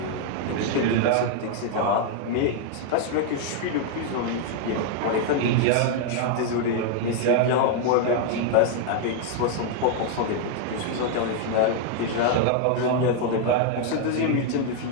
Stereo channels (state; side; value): different; both; correlation 0.00